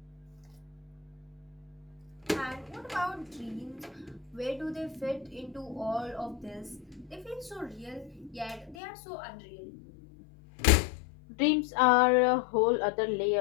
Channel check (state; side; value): drops out; right; at 8.8 s